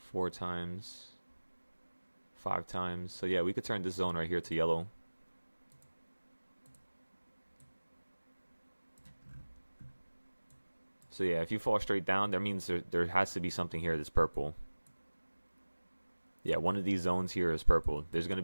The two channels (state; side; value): inverted; both; correlation -1.00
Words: times, 5 times. So yeah, we could turn this zone right here to yellow. So yeah, if you fall straight down, that means there has to be something here that's purple. Yeah, one of these zones here is purple. There's going to